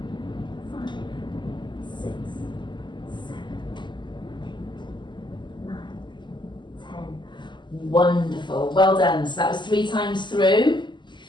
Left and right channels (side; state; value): right; late; 0.22 ms